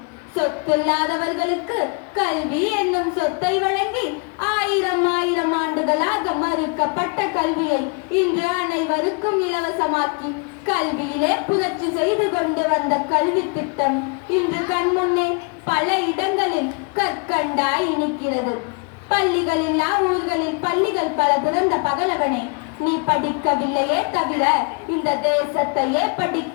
சொத்தில்லாதவர்களுக்கு கல்வி என்னும் சொத்தை வழங்கி 1000 ஆண்டுகளாக மறுக்கப்பட்ட கல்வியை இன்று அனைவருக்கும் இலவசமாக்கி கல்வியிலே புரட்சி செய்து கொண்டு வந்த கல்வி திட்டம் இன்று கண்முன்னே பல இடங்களில் கற்கண்டாய் இனிக்கிறது. பள்ளிகளில்லா ஊர்களில் பள்ளிகள் பல திறந்த பகலவனே, நீ படிக்கவில்லையே தவிர இந்த தேசத்தையே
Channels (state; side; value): quieter; right; 34.4 dB